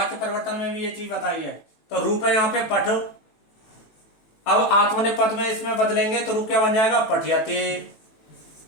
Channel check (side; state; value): right; late; 18 ms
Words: परिवर्तन में भी ये चीज बताई है। तो रूप है यहाँ पे पठ। अब आत्मनेपद में इसमें बदलेंगे तो रूप क्या बन जाएगा? पठयते,